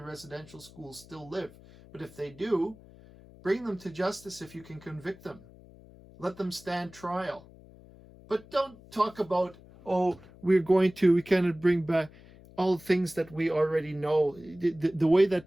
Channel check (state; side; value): noise; left; hum, 22 dB below the sound